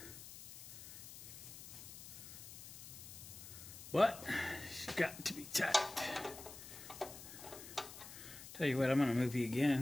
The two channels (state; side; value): noise; left; hiss, 13 dB below the sound